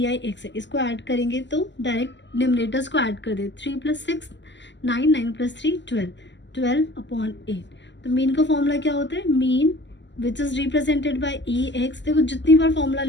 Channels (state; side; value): late; right; 0.53 ms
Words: आई एक्स है, इसको ऐड करेंगे तो डायरेक्ट डिनोमिनेटर्स को ऐड कर दे. 3 + 6 9, 9 + 3 12, 12/8. तो मीन का फॉर्मूला क्या होता है, mean which is represented by E x. देखो जितनी बार फॉर्मूला